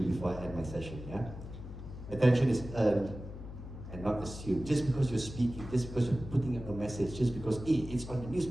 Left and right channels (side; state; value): left; noise; hum, 11 dB below the sound